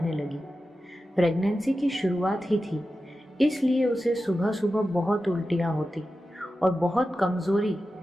लगी। प्रेगनेंसी की शुरुआत ही थी, इसलिए उसे सुबह सुबह बहुत उल्टियाँ होती और बहुत कमज़ोरी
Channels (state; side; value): normal; both; correlation 0.92